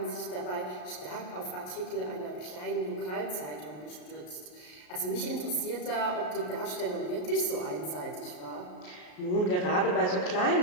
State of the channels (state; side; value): late; right; 33 ms